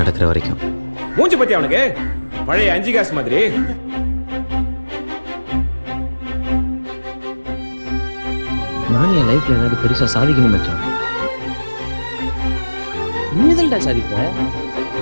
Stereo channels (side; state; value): both; inverted; correlation -1.00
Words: வரைக்கும். மூஞ்சி பத்தி அவனுக்கு பழைய 5 காசு மாதிரி. நான் என் லைஃப்ல ஏதாவது பெருசா சாதிக்கணும் மச்சான். நீதல்டா சாதிப்ப.